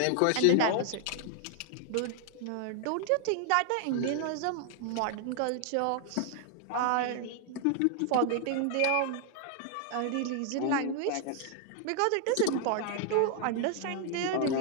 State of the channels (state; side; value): different; both; correlation 0.00